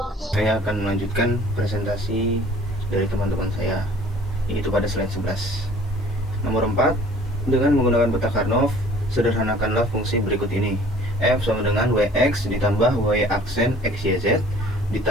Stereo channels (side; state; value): both; normal; correlation 0.51